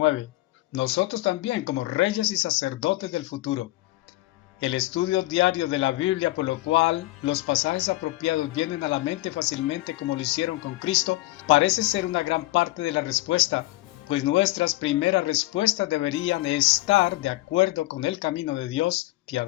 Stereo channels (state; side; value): quieter; right; 18.9 dB